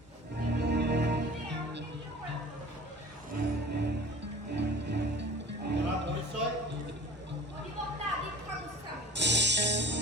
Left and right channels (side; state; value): both; normal; correlation 0.44